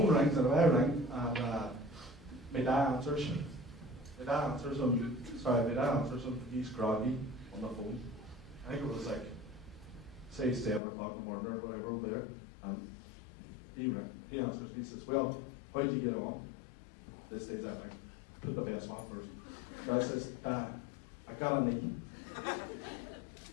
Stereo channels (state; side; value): drops out; right; at 10.8 s